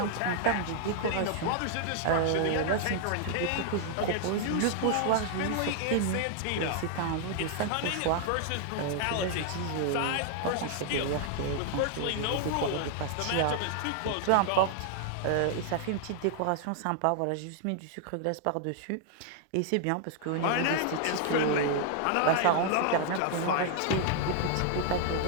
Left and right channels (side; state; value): both; different; correlation -0.01